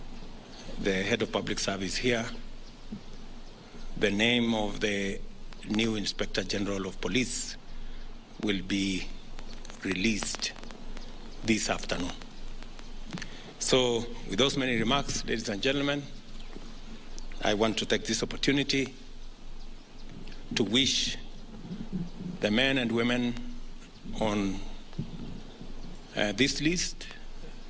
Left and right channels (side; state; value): both; identical; correlation 1.00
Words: head of public service here, the name of the new Inspector General of Police will be released this afternoon. So, with those many remarks, ladies and gentlemen, I want to take this opportunity to wish the men and women on this list,